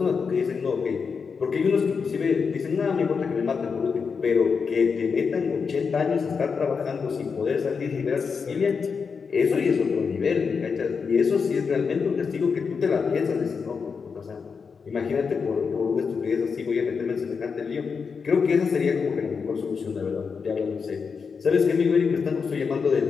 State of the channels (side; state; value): right; quieter; 5.6 dB